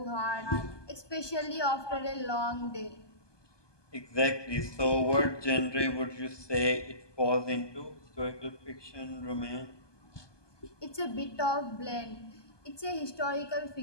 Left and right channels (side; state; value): right; late; 1.2 ms